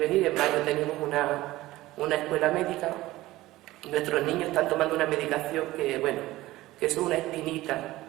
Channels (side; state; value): left; quieter; 17.4 dB